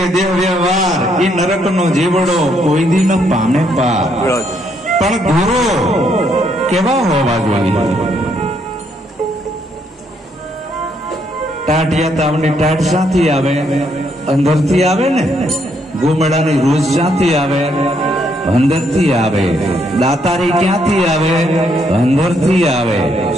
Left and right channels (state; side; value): normal; both; correlation 0.73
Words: દેહ વ્યવહાર, એ નરકનો જીવડો કોઈ દી ન પામે પાર. પણ ગુરુ કેવા હોવા જોઈએ? ટાઢિયા તાવની ટાઢ શાથી આવે? અંદરથી આવે ને. ગોમેડાની રોજ શાથી આવે? અંદરથી આવે. દાતારી ક્યાંથી આવે? અંદરથી આવે.